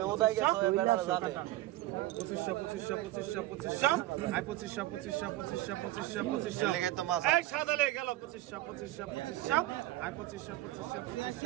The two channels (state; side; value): quieter; left; 16.8 dB